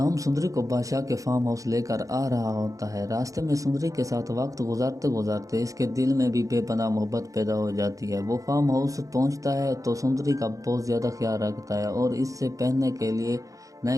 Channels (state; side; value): late; left; 0.16 ms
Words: सुंदरी को बादशाह के फार्म हाउस लेकर आ रहा होता है। रास्ते में सुंदरी के साथ वक्त गुजारते गुजारते इसके दिल में भी बेपनाह मोहब्बत पैदा हो जाती है। वो फार्म हाउस पहुंचता है तो सुंदरी का बहुत ज़्यादा ख्याल रखता है और इससे पहनने के लिए